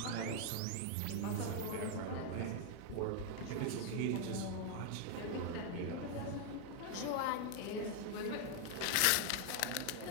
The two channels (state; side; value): different; both; correlation 0.00